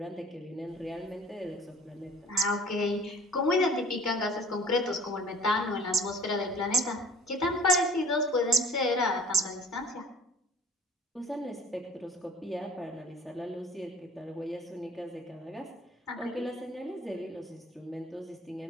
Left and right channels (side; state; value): both; normal; correlation 0.49